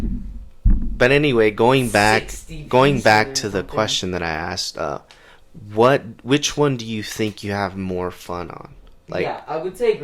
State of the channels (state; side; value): identical; both; correlation 1.00